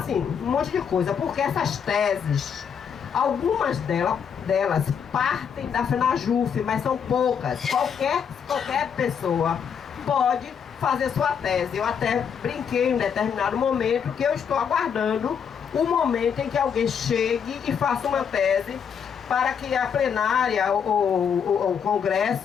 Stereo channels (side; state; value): right; quieter; 7.3 dB